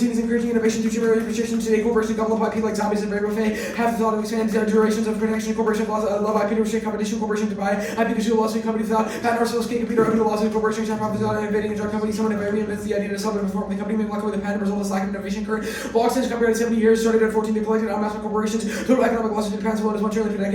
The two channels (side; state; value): both; identical; correlation 1.00